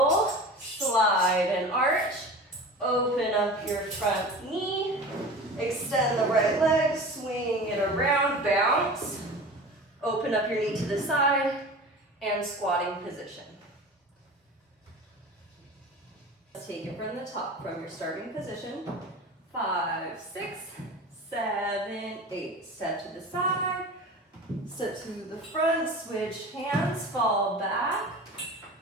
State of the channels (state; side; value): normal; both; correlation 0.35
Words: slide and arch, open up your front knee, extend the right leg, swing it around, bounce, open up your knee to the side, and squatting position. Let's take it from the top, from your starting position. 5, 6, 7, 8. Step to the side, step to the front, switch hands, fall back,